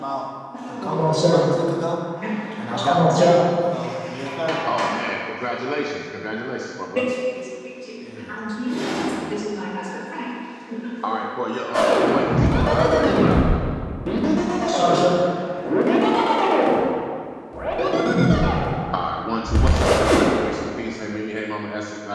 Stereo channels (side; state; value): both; identical; correlation 1.00